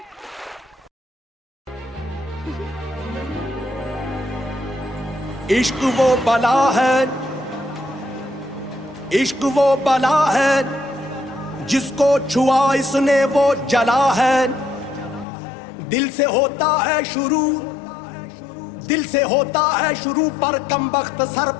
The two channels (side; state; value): right; drops out; at 15.2 s